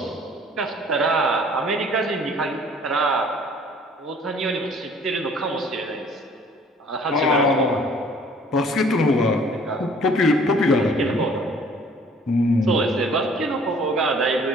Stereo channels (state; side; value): normal; both; correlation 0.55